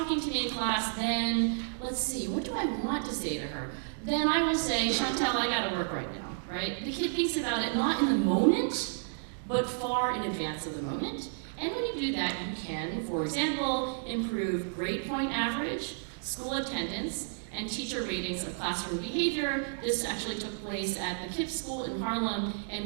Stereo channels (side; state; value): left; silent; digital silence